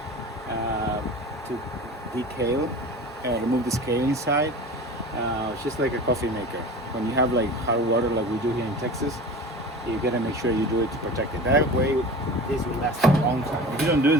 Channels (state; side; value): normal; both; correlation 0.36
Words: to decale, remove the scale inside. It's just like a coffee maker. When you have like hot water like we do here in Texas, you gotta make sure you do it to protect it. That way, this will last a long time. If you don't do